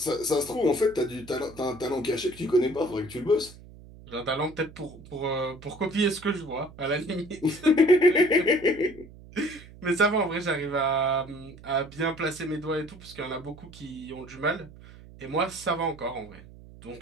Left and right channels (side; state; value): right; noise; hum, 19 dB below the sound